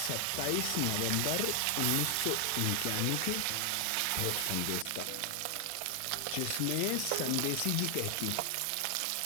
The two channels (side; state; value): both; different; correlation 0.00